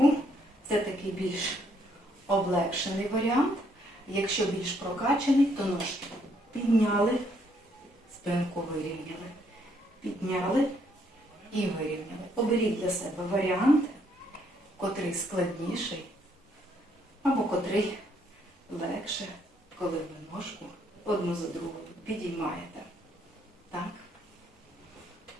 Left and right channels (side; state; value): both; normal; correlation 0.70